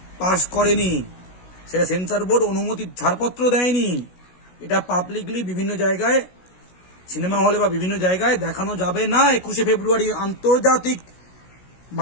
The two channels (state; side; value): late; right; 16 ms